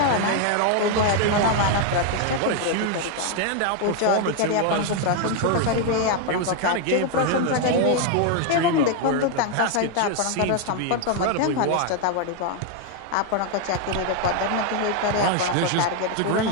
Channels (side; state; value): both; different; correlation 0.01